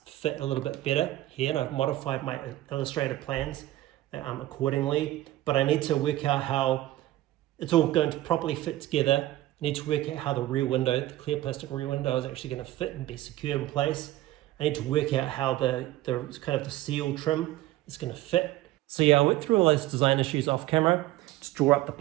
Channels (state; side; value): quieter; left; 15.8 dB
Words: fit a little bit better here, and I've modified my illustrator plans accordingly, but I need to work out how it's all going to properly fit together. I need to work out how the rear window, the clear plastic rear window, is actually going to fit and be secure in place. I need to work out how the kind of the seal trim is going to fit. So yeah, I went through all those design issues off camera, just draw up the